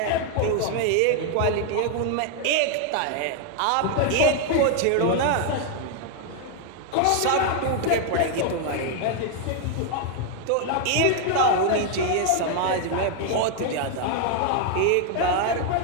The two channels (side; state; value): both; different; correlation 0.00